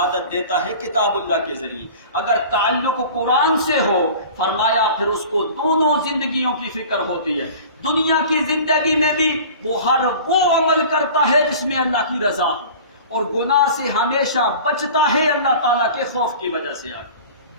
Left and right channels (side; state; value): both; inverted; correlation -0.41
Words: دیتا ہے کتاب اللہ کے ذریعے. اگر تعلق قرآن سے ہو، فرمایا پھر اس کو دونوں زندگیوں کی فکر ہوتی ہے. دنیا کی زندگی میں بھی وہ ہر وہ عمل کرتا ہے جس میں اللہ کی رضا ہو، اور گناہ سے ہمیشہ بچتا ہے اللہ تعالیٰ کے خوف کی وجہ سے.